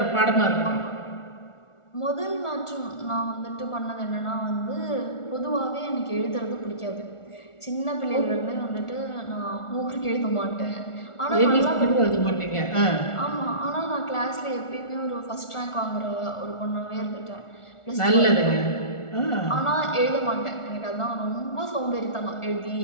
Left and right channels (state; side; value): late; right; 1.4 ms